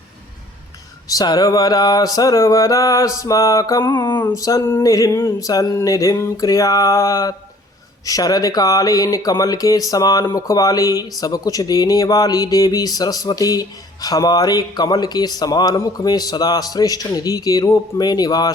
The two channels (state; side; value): normal; both; correlation 0.54